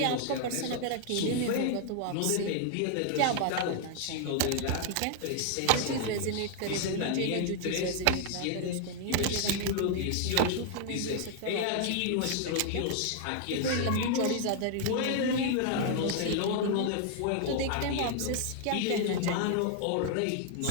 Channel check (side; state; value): both; different; correlation 0.00